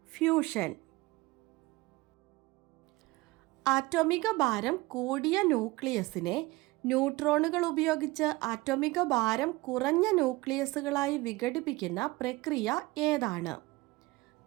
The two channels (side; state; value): left; quieter; 21.2 dB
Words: fusion. ആറ്റോമിക ഭാരം കൂടിയ ന്യൂക്ലിയസിനെ ന്യൂട്രോണുകൾ ഉപയോഗിച്ച് ആറ്റോമിക ഭാരം കുറഞ്ഞ ന്യൂക്ലിയസുകളായി വിഘടിപ്പിക്കുന്ന പ്രക്രിയ ഏതാണ്?